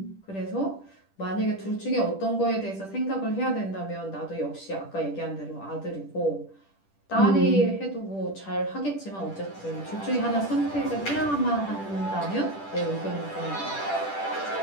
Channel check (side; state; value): right; late; 10 ms